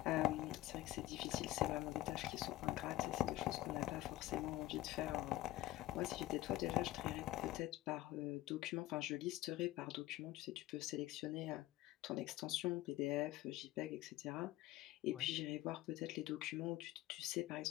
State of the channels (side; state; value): right; quieter; 16.2 dB